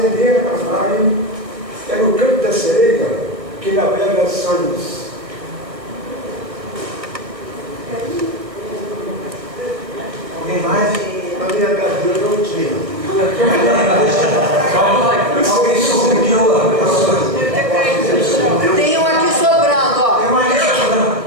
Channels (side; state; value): left; late; 1.5 ms